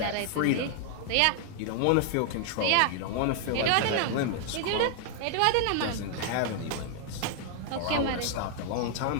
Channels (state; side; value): different; both; correlation 0.00